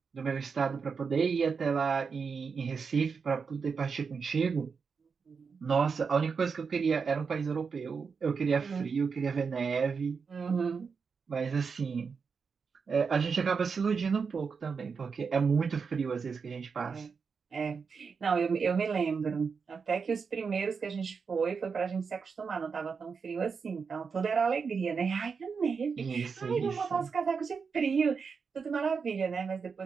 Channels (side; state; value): left; quieter; 5.5 dB